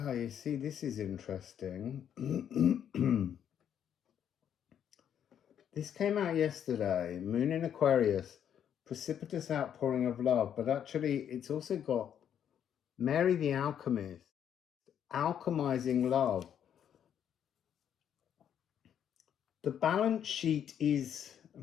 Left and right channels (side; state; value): right; quieter; 9.2 dB